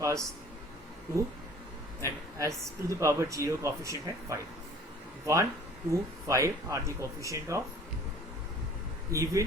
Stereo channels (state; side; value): normal; both; correlation 0.50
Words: पास 2 and s to the power 0 coefficient है 5। 1 2 5 are the coefficient of even